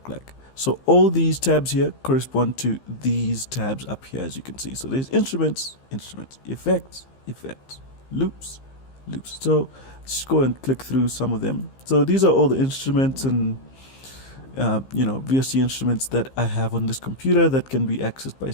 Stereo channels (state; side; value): late; right; 15 ms